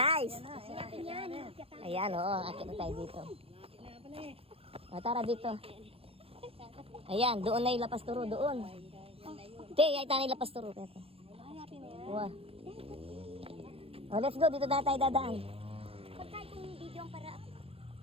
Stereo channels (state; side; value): late; left; 0.28 ms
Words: Yan. Ayan, oo. Akit na tayo dito. O, tara dito. Ayan, doon na yung lapas turo. Doon. Te, ay tayo yung lapas turo. Uwa. O, let's go. Dito na tayo dadaan. Pagkay kong video ang para